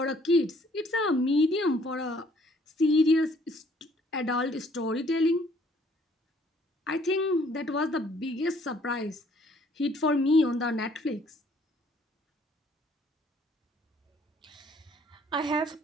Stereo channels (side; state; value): both; normal; correlation 0.62